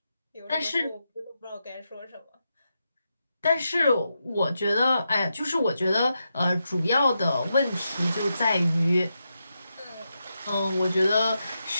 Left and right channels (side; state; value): both; inverted; correlation -0.86